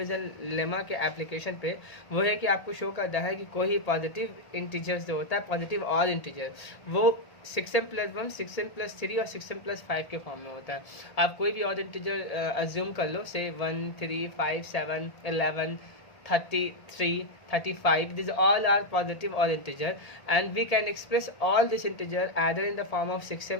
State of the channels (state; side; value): late; right; 1.8 ms